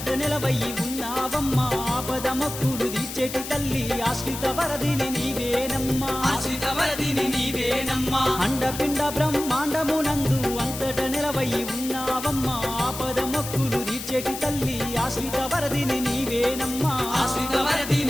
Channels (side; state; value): left; noise; hiss, 9 dB below the sound